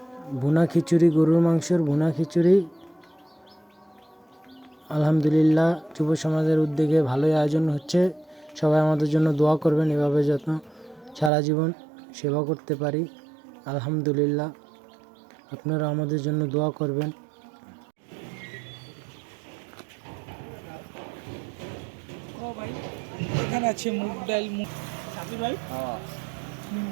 ভুনা খিচুড়ি, গরুর মাংসের ভুনা খিচুড়ি, আলহামদুলিল্লাহ যুব সমাজের উদ্যোগে ভালোই আয়োজন হচ্ছে। সবাই আমাদের জন্য দোয়া করবেন, এভাবে যত্ন সারা জীবন সেবা করতে পারি। আলহামদুলিল্লাহ, আপনারা আমাদের জন্য দোয়া করবেন। এখানে আছে মুগ ডাল, মুগ সাথী ভাই।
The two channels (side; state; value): left; drops out; at 11.3 s